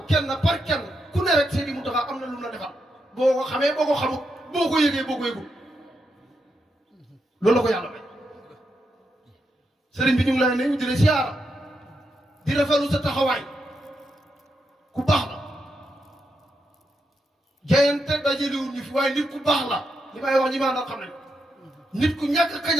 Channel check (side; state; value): both; normal; correlation 0.84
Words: kenn par kenn ku ne rek Seydi Muntaxa am na lu mu la defal boo ko xamee boo ko xamut boo ko yëgee boo ko yëgul loolu la ko yàlla may sëriñ bi ñu ngi lay nuyu di la siyaara di rafetlu sa taxawaay ku baax la jayante dajaliwul ñu fi waaye nit ku baax la li may wax ñi maa nag xam nañ nit ku ñàkk